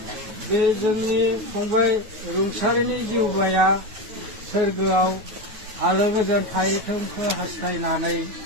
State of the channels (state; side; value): late; left; 9.4 ms